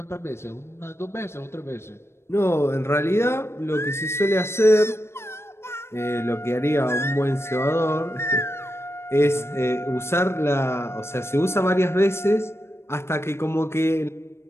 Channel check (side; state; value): right; late; 0.12 ms